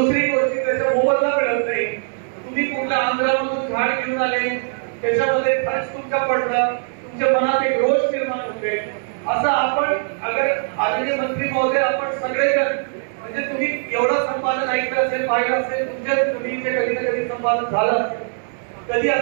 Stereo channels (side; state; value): left; silent; 62 dB below the other